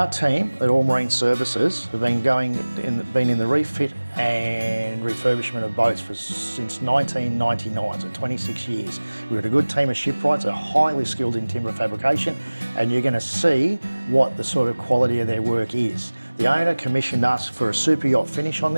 team at All Marine Services have been in the refit and refurbishment of boats since 1999, so 26 years. We've got a good team of shipwrights that are highly skilled in timber fabrication, and you're going to see what the sort of quality of their work is. The owner commissioned us for a super yacht finish on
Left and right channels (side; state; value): both; inverted; correlation -1.00